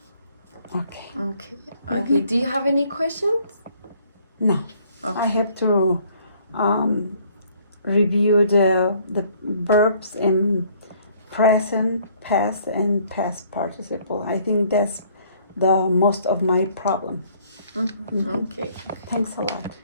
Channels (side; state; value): both; inverted; correlation -0.61